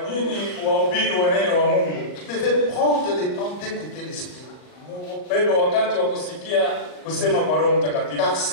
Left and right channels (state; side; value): late; right; 39 ms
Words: nini wahubiri wa neno wa Mungu devez prendre le temps d'écouter l'Esprit. Bebe wakati wa kusikia kusema kwa Roho Mtakatifu. Car